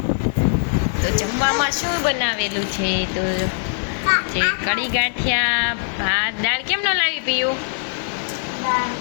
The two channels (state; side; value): silent; right; digital silence